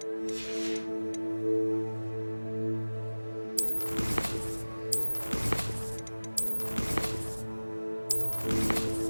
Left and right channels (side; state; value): both; inverted; correlation -1.00